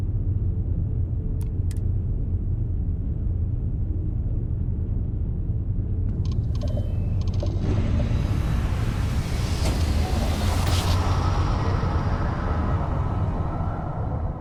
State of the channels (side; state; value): both; identical; correlation 1.00